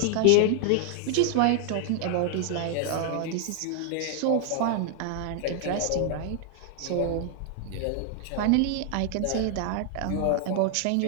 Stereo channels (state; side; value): different; both; correlation 0.00